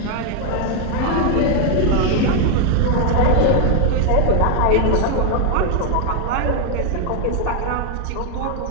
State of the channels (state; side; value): different; both; correlation 0.00